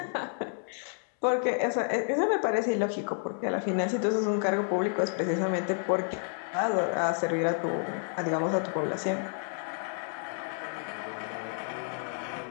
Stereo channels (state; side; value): silent; right; 58 dB below the other